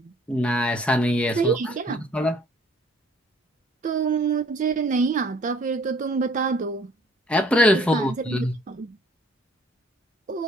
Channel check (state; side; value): normal; both; correlation 0.58